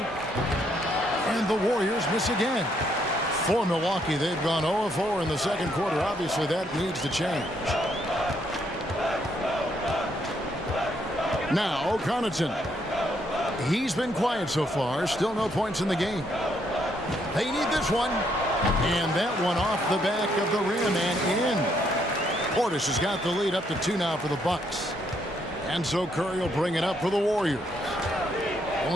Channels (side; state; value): both; normal; correlation 0.73